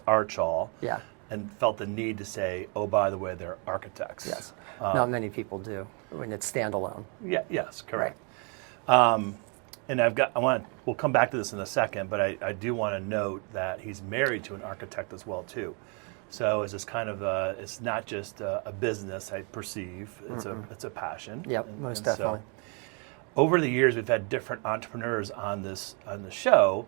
Archall. Yeah. And felt the need to say, oh, by the way, they're architects. Yes. Not many people do when it's standalone. Yeah. Yes. Correct. Right. And we'll come back to this in a second, but I do want to note that he's married to an architect as well too. So it's just kind of it's not just a business, I perceive. It's a passion. Yep, most definitely. So, over the years, we've had different entrepreneurs on the show,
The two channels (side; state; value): left; quieter; 36.3 dB